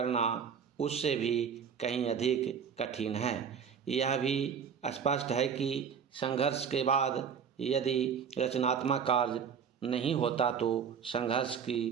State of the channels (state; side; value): quieter; left; 7.1 dB